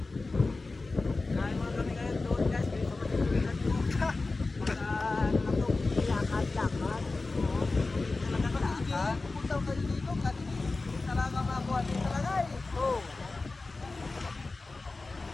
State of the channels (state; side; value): quieter; right; 3.5 dB